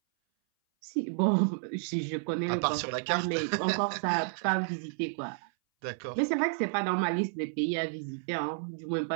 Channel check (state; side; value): silent; left; 57 dB below the other